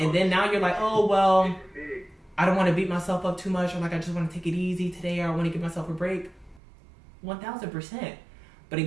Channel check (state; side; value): drops out; left; at 6.6 s